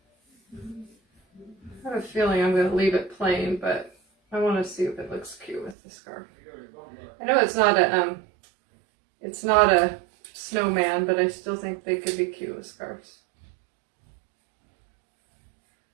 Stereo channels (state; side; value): drops out; left; at 5.8 s